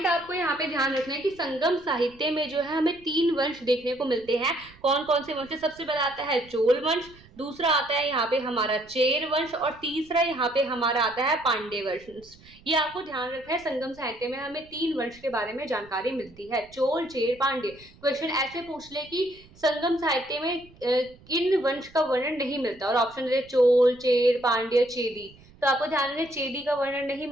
यहाँ पे ध्यान रखना है कि संगम साहित्य में जो है हमें 3 वंश देखने को मिलते हैं। कौन कौन से वंश? सबसे पहला आता है चोल वंश, दूसरा आता है यहाँ पे हमारा चेर वंश, और तीसरा यहाँ पे हमारा आता है पांड्य वंश। ये आपको ध्यान रखना है। संगम साहित्य में हमें 3 वंश के बारे में जानकारी मिलती है, चोल, चेर, पांड्य। क्वेश्चन ऐसे पूछ ले कि संगम साहित्य में किन वंश का वर्णन नहीं मिलता, और ऑप्शन दे चोल, चेर, पांड्य, चेदी, तो आपको ध्यान रखना, चेदी का वर्णन नहीं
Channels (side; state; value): right; noise; rumble, 25 dB below the sound